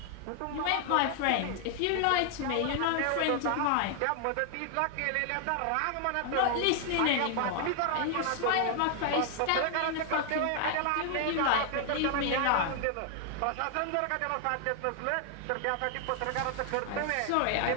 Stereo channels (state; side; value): different; both; correlation 0.00